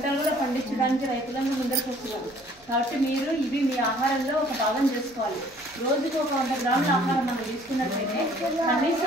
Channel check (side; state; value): both; normal; correlation 0.57